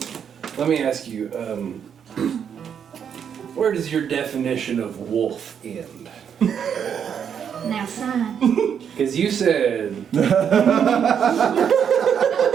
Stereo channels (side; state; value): left; quieter; 7.9 dB